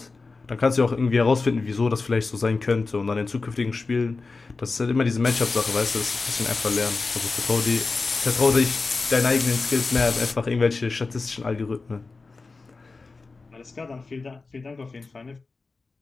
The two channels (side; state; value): right; quieter; 3.9 dB